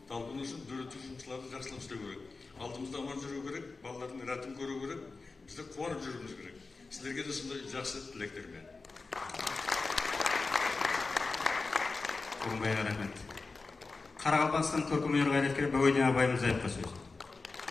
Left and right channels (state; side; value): quieter; right; 3.9 dB